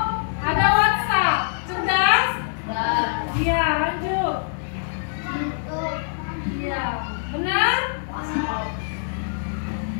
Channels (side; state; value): right; silent; 63 dB below the other